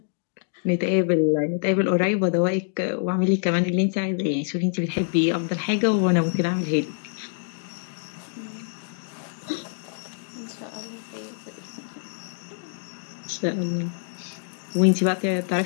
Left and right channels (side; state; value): right; silent; digital silence